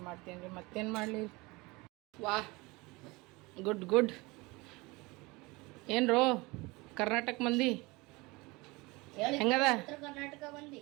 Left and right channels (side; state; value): left; quieter; 24.0 dB